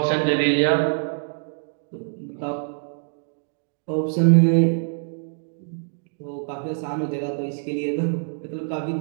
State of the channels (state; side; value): silent; left; digital silence